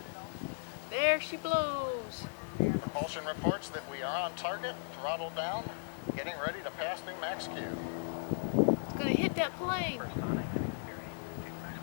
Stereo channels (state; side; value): silent; right; digital silence